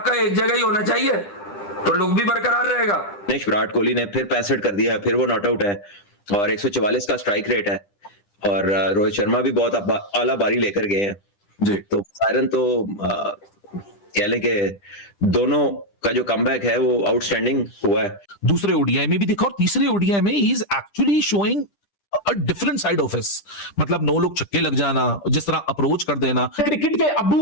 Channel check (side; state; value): right; late; 10 ms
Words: एक जगह ही होना चाहिए तो लुक भी बरकरार रहेगा। विराट कोहली ने फिर 65 कर दिया है, फिर वो नॉट आउट है और 144 का स्ट्राइक रेट है और रोहित शर्मा भी बहुत आला बारी लेकर गए हैं जी। तो सायरन तो कह लें कि दोनों का जो कमबैक है वो आउटस्टैंडिंग हुआ है। दूसरे ओडीआई में भी देखा और तीसरे ओडीआई में he is actually showing a different side of his, मतलब नो लोग छक्के लग जाना, जिस तरह अप्रोच कर देना। क्रिकेट के